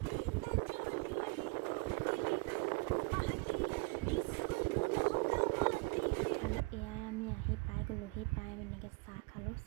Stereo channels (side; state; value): left; quieter; 27.6 dB